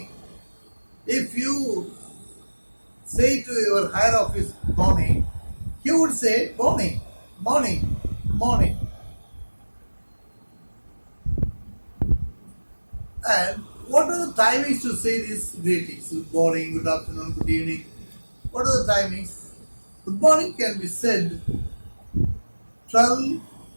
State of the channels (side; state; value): both; inverted; correlation -1.00